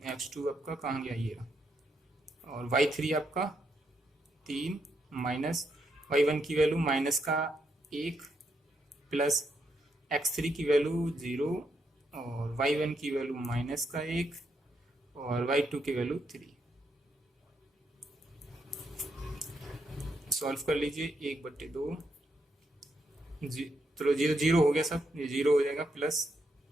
x2 आपका कहाँ गया ये, और y3 आपका 3 माइनस y1 की वैल्यू माइनस का 1 प्लस x3 की वैल्यू 0 और y1 की वैल्यू माइनस का 1 और y2 की वैल्यू 3। सॉल्व कर लीजिए 1/2, चलो 0 हो गया, सब ये 0 हो जाएगा, प्लस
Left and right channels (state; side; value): normal; both; correlation 0.79